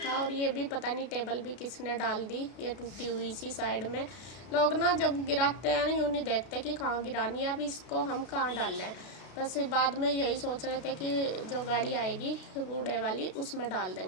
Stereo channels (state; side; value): late; right; 32 ms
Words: और ये भी पता नहीं टेबल भी किसने डाल दी, ये टूटी हुई सी साइड में। लोग ना जब गिराते हैं यूँ नहीं देखते कि कहाँ गिरानी है, अब इसको हम कहाँ डाल लें। बस बाद में यही सोच रहे थे कि जो गाड़ी आएगी कूड़े वाली उसमें डाल